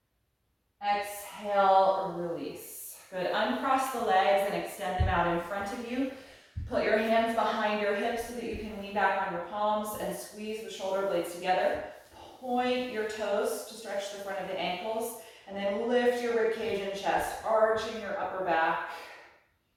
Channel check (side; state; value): both; identical; correlation 1.00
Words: Exhale, release. Good, uncross the legs and extend them out in front of you. Put your hands behind your hips so that you can lean back on your palms and squeeze the shoulder blades together. Point your toes to stretch the front of the ankles, and then lift your ribcage and chest, arching your upper back.